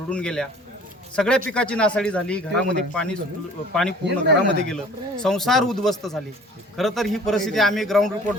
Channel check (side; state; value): both; normal; correlation 0.49